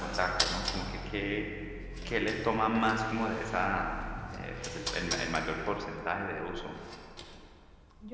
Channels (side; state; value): both; identical; correlation 1.00